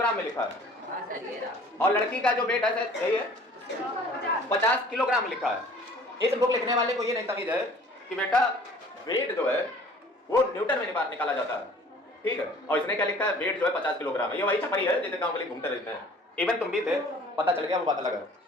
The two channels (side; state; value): both; normal; correlation 0.51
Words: में लिखा है। हाँ सर ये रहा। और लड़की का जो वेट है सर यही है 50 किलोग्राम लिखा है। इस बुक लिखने वाले को ये नहीं तमीज है कि बेटा वेट जो है वो न्यूटन में निकाला जाता है, ठीक है। और इसने क्या लिखा है, वेट जो है 50 किलोग्राम है। ये वही छपरी है जैसे गांव के लिए घूमते रहते हैं। इवन तुम भी थे, पता चल गया, वो बात अलग है।